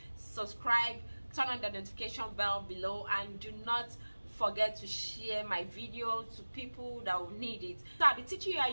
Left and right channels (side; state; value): both; inverted; correlation -1.00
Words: subscribe, turn on the notification bell below, and do not forget to share my video to people that will need it. So I'll be teaching you how